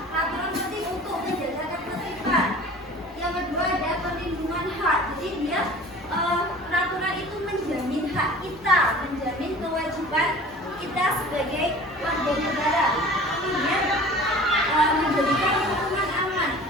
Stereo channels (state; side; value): normal; both; correlation 0.43